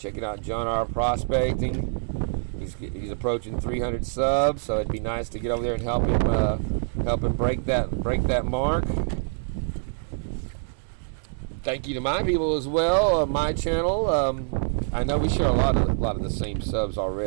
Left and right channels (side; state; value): left; silent; digital silence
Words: John R. Prospecting. He's approaching 300 subs, so it'd be nice to get over there and help him break that mark. Thank you to my people as well, my channel. I know we share a lot of the same subs